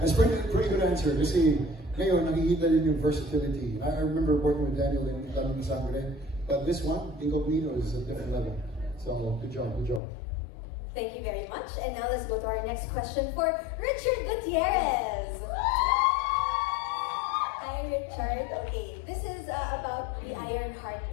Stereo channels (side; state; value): right; drops out; at 10.0 s